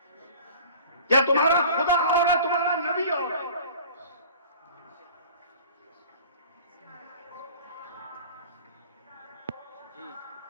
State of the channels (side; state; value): both; inverted; correlation -0.44